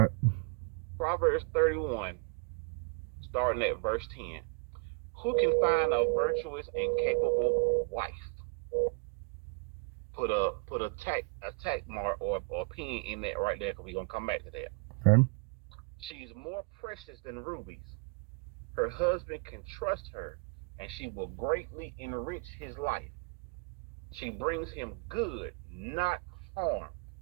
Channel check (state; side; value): quieter; left; 33.5 dB